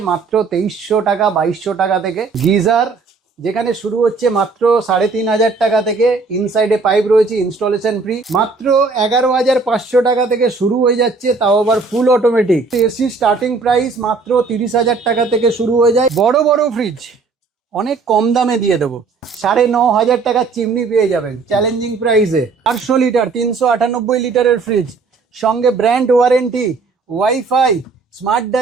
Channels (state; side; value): quieter; left; 4.4 dB